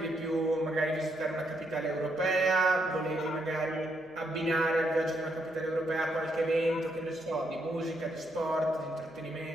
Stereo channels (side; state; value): both; normal; correlation 0.77